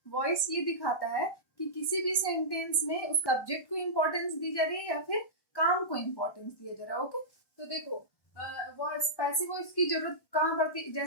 वॉइस ये दिखाता है कि किसी भी सेंटेंस में उस सब्जेक्ट को इम्पोर्टेंस दी जा रही है या फिर काम को इम्पोर्टेंस दिया जा रहा है। ओके, तो देखो वॉइस पैसिव वॉइस की जरूरत कहाँ पड़ती है।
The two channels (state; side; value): late; right; 1.1 ms